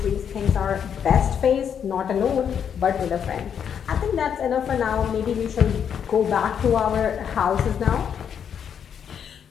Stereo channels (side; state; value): right; quieter; 8.0 dB